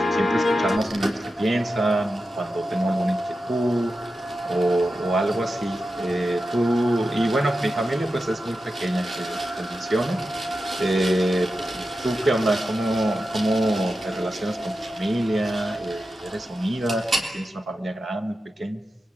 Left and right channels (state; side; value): normal; both; correlation 0.91